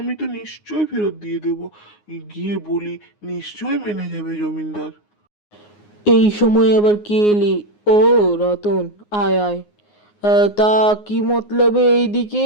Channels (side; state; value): right; late; 9.6 ms